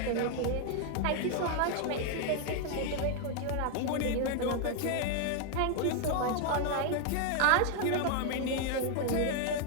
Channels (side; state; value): both; different; correlation 0.00